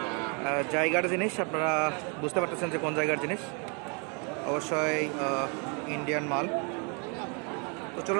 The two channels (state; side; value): quieter; left; 35.2 dB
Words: জায়গার জিনিস। আপনারা বুঝতে পারতেছেন যে কোন জায়গার জিনিস, অবশ্যই ইন্ডিয়ান মাল। তো